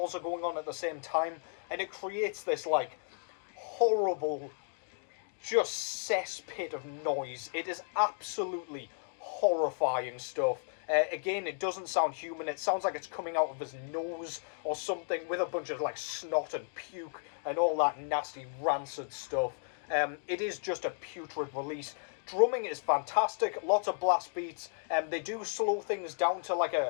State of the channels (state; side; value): silent; right; digital silence